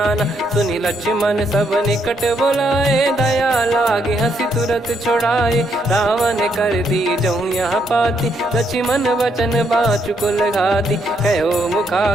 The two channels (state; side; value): normal; both; correlation 0.75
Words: सुनि लक्ष्मण सब निकट बुलाए, दया लागे हंसी तुरत छोड़ाए, रावण कर दी जहूँ यहाँ पाती, लक्ष्मण वचन बाचु कुल घाती, कहो